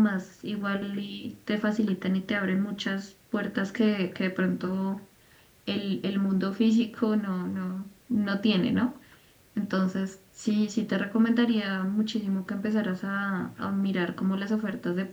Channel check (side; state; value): both; identical; correlation 1.00